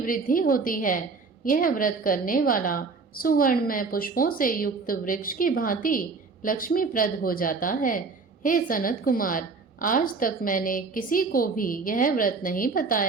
होती है। यह व्रत करने वाला सुवर्ण में पुष्पों से युक्त वृक्ष की भांति लक्ष्मीप्रद हो जाता है। हे सनत कुमार, आज तक मैंने किसी को भी यह व्रत नहीं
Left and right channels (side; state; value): left; quieter; 4.4 dB